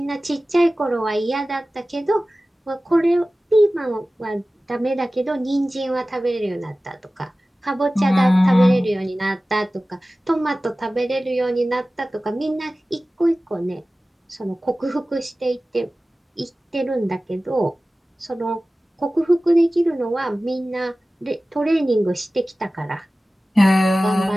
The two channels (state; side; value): normal; both; correlation 0.96